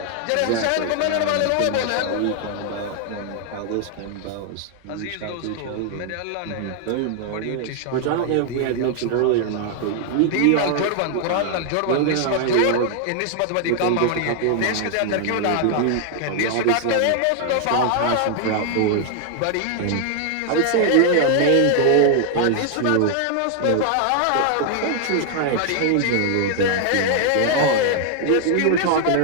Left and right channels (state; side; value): different; both; correlation 0.00